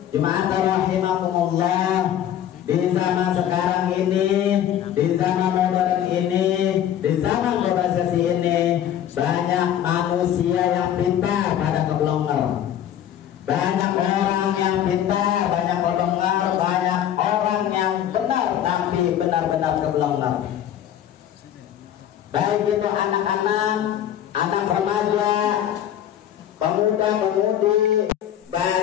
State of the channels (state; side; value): quieter; right; 10.7 dB